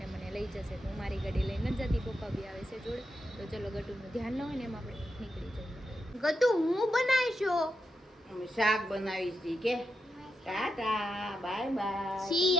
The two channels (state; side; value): normal; both; correlation 0.87